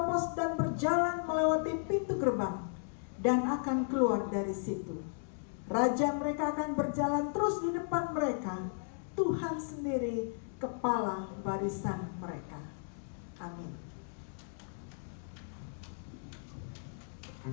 dan berjalan melewati pintu gerbang dan akan keluar dari situ. Raja mereka akan berjalan terus di depan mereka. Tuhan sendiri kepala barisan mereka. Amin.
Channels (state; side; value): silent; right; digital silence